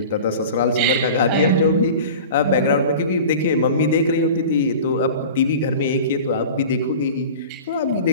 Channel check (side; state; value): both; inverted; correlation -0.37